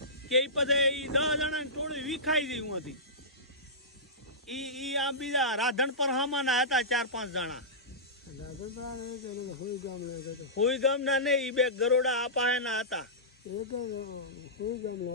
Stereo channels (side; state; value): both; normal; correlation -0.18